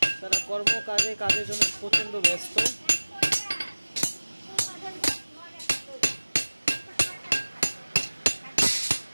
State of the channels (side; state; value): both; inverted; correlation -1.00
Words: কাজের জন্য প্রচণ্ড ব্যস্ত।